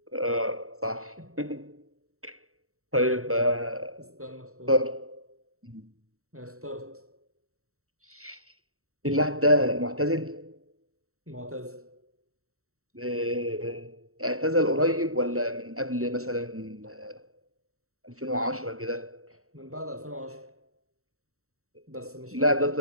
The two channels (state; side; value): late; left; 0.64 ms